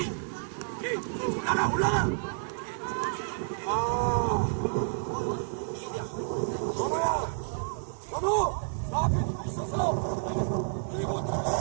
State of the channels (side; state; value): left; silent; 58 dB below the other